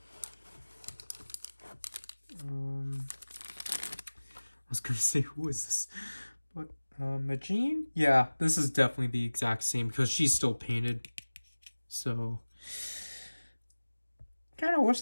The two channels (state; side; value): inverted; both; correlation -1.00